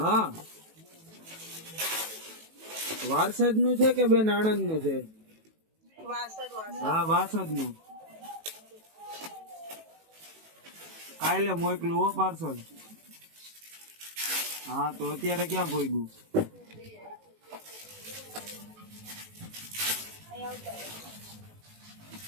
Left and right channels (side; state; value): left; late; 18 ms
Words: વારસદ નું છે કે બેન આણંદ નું છે? હા વાસદ નું. કાલે મોકલું હો પાર્સલ. હા તો અત્યારે ક્યાં પહોંચ્યું?